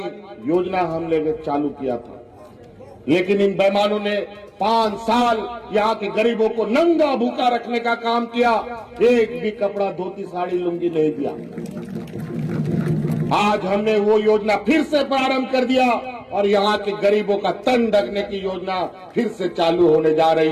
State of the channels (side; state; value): both; identical; correlation 1.00